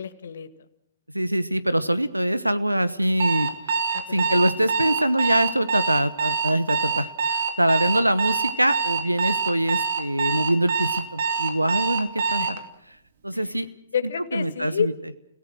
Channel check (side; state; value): both; inverted; correlation -0.86